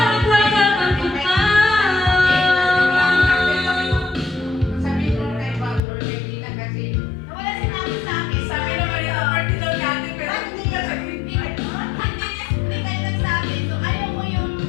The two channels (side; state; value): right; drops out; at 5.8 s